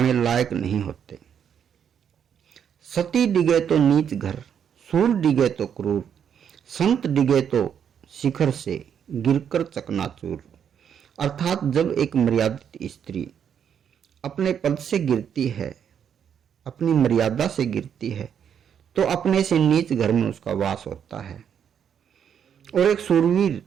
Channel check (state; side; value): quieter; left; 8.3 dB